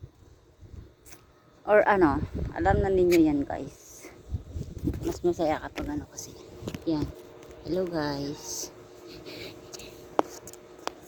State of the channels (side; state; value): both; identical; correlation 1.00